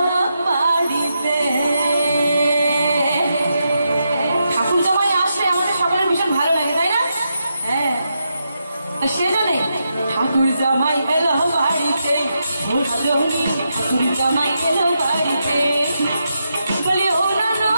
বাড়িতে। ঠাকুর জামাই আসলে আমাদের সকলের ভীষণ ভালো লাগে, তাই না? হ্যাঁ, সেজন্যে ঠাকুর জামাই এলো বাড়িতে, ও রজনী ঠাকুর জামাই এলো বাড়িতে। বলি ও না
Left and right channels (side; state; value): both; inverted; correlation -0.84